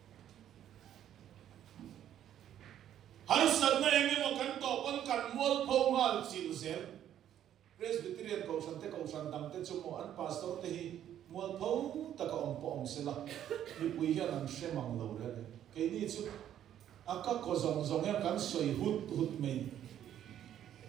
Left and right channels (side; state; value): left; quieter; 10.8 dB